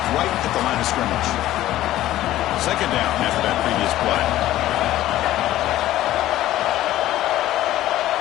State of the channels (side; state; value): right; quieter; 14.4 dB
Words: right at the line of scrimmage. 2nd down after that previous play.